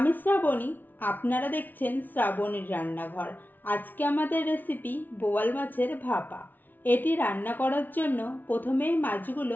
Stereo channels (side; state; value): right; late; 0.086 ms